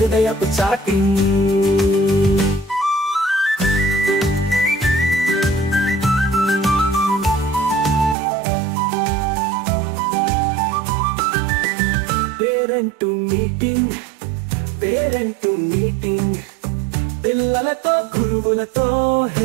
chatting. Parent meeting, parent meeting. పిల్లలతో గురువులతో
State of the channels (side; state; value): left; drops out; at 8.2 s